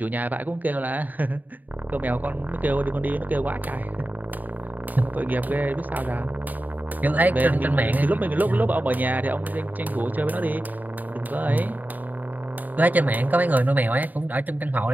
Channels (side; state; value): left; late; 0.084 ms